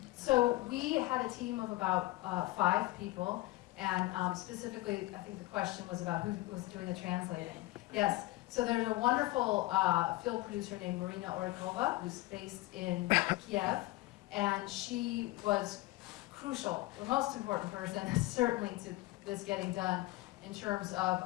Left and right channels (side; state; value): right; quieter; 19.4 dB